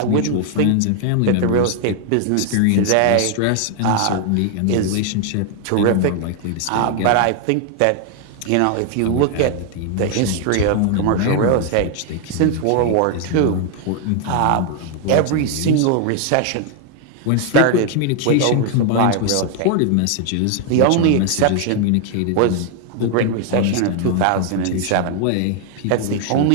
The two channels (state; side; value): different; both; correlation 0.00